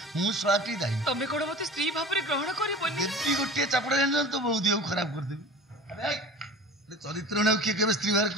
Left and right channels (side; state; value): both; normal; correlation 0.38